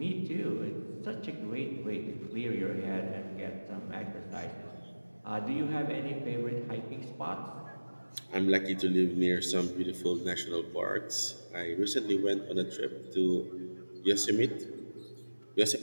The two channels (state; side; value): inverted; both; correlation -1.00